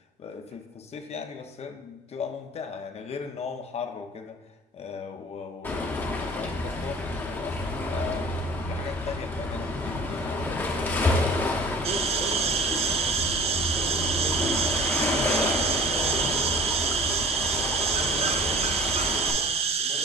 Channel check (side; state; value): both; normal; correlation 0.45